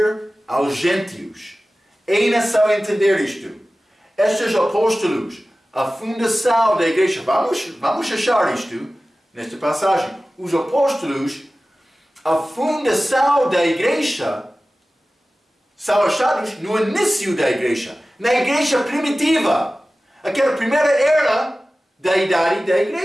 aos gentios. É necessário entender isto. Estes apóstolos, a fundação da igreja, vamos achar isto nesta passagem. Os apóstolos, a fundação da igreja, são achados no início da igreja, na igreja primitiva, aquela primeira era da idade da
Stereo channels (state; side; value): normal; both; correlation 0.96